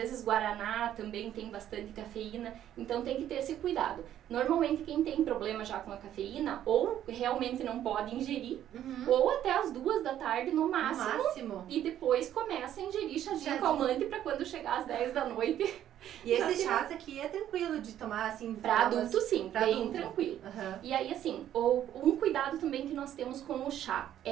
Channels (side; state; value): left; quieter; 11.3 dB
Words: guaraná também tem bastante cafeína, então tem que ter esse cuidado. Normalmente quem tem problema já com a cafeína, ou realmente não pode ingerir, ou até as 2 da tarde no máximo. E depois começa a ingerir chazinho calmante para quando chegar às 10 da noite... E esse chás aqui é tranquilo de tomar, assim... Pra adulto, sim, bem tranquilo. E aí, assim, um cuidado também que nós temos com o chá